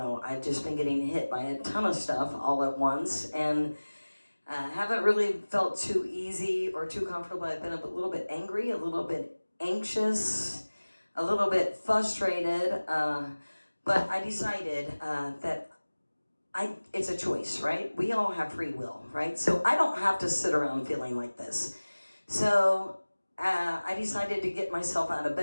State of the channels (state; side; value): inverted; both; correlation -1.00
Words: I've just been getting hit by a ton of stuff all at once, and haven't really felt too easy or too comfortable. I've been a little bit angry, a little bit anxious, a little bit frustrated, but I decided that it's a choice, right? We all have free will, right? So I don't have to sit around feeling like this. So I decided to get myself out of